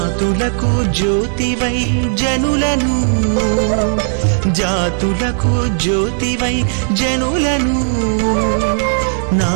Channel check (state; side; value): silent; left; digital silence